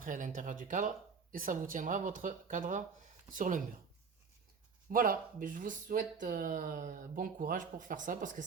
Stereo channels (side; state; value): left; quieter; 5.6 dB